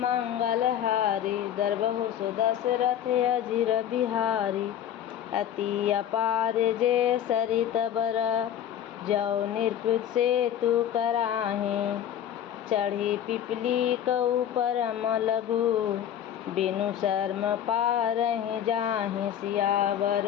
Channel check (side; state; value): right; quieter; 10.2 dB